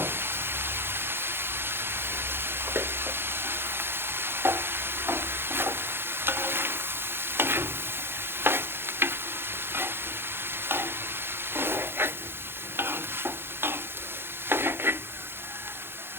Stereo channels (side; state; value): left; late; 0.11 ms